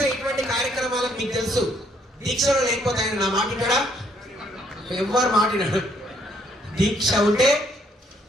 ఇటువంటి కార్యక్రమాలకు మీకు తెలుసు. దీక్షలో లేకపోతే ఆయన నా మాటినాడా? ఎవరు మాటినాడు? దీక్ష ఉంటే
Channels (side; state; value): both; normal; correlation 0.68